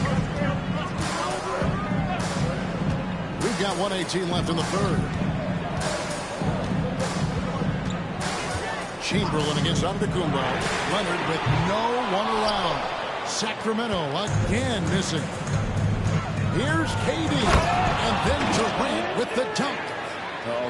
We've got 1:18 left in the third. Chamberlain against Antetokounmpo. Leonard with no one around. Sacramento again missing. Here's KD, and then Durant with the dunk. Oh,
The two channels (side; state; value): both; identical; correlation 1.00